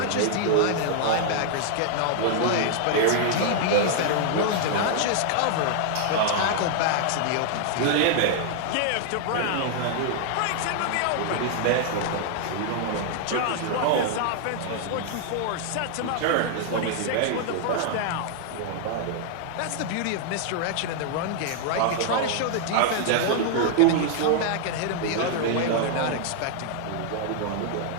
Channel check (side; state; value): both; different; correlation 0.00